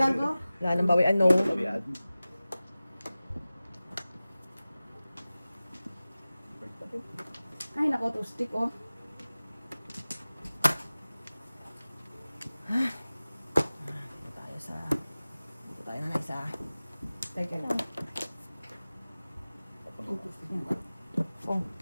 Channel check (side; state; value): both; inverted; correlation -0.97